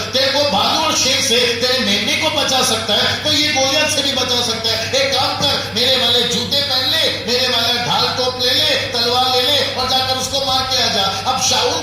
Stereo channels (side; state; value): both; identical; correlation 1.00